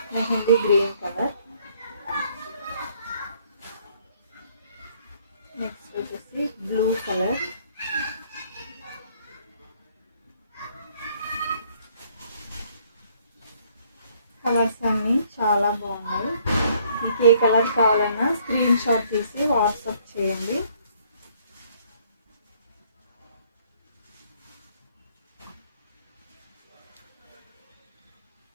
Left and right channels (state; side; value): inverted; both; correlation -0.63